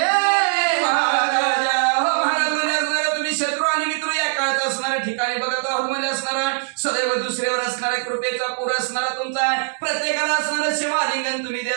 ठिकाणी बघत आहोत म्हणजे असणारा सदैव दुसऱ्यावर असणारा कृपेचा पूर असणारा तुमचा प्रत्येकाला असणारा शिवालिंगन तुम्ही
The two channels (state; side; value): silent; left; 65 dB below the other